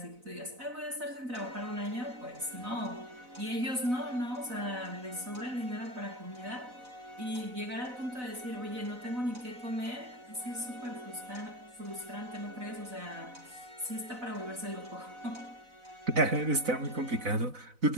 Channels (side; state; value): left; late; 4.0 ms